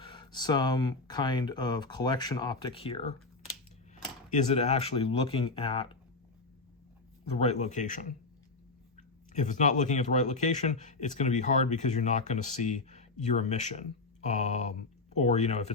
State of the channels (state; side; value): quieter; right; 3.6 dB